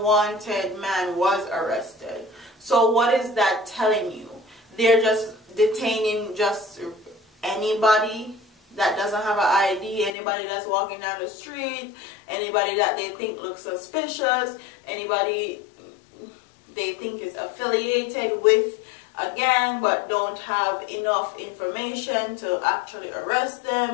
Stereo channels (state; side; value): drops out; right; at 10.1 s